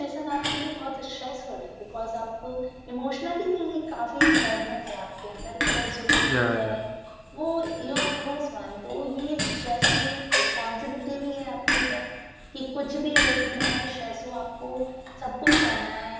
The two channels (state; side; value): identical; both; correlation 1.00